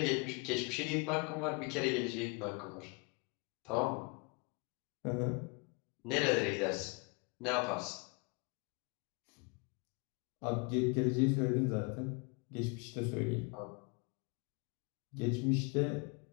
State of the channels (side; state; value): right; quieter; 31.7 dB